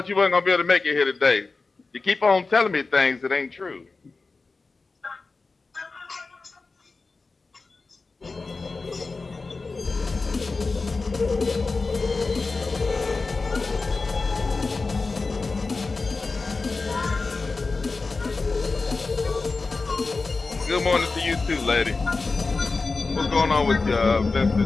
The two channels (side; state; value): right; quieter; 3.9 dB